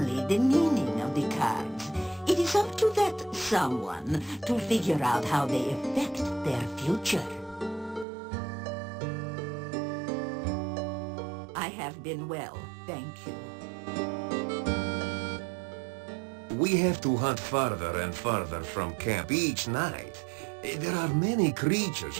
the meaning of the cards. It is up to that someone to figure out how they affect their future. I have been well, thank you. We have to hunt farther and farther from camp each night. There are many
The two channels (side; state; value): left; drops out; at 8.1 s